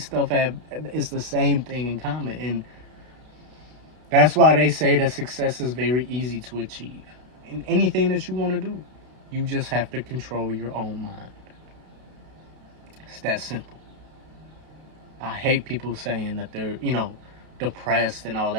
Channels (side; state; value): left; late; 32 ms